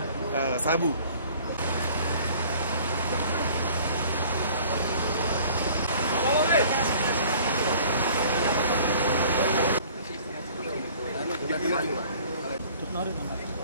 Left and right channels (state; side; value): inverted; both; correlation -0.51